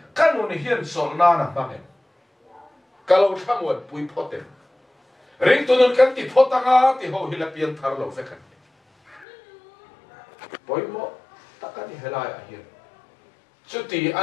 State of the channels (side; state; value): right; drops out; at 9.2 s